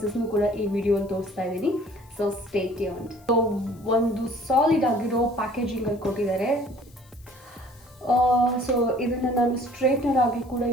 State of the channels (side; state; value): left; noise; hiss, 28 dB below the sound